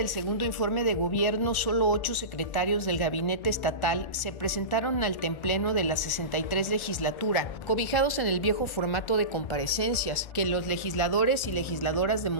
segundo informe de gobierno, solo 8 secretarios del gabinete estatal se presentaron al templeno de la 63 legislatura, cobijados en el viejo formato de comparecencias, que los legisladores y legisladoras de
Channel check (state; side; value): late; right; 1.3 ms